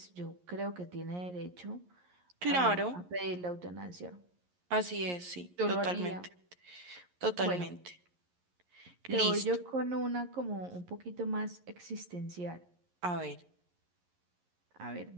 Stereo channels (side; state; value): left; late; 11 ms